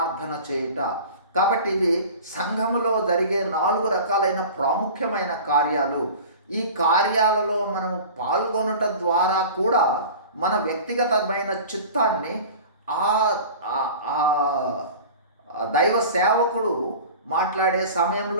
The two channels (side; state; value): both; inverted; correlation -0.38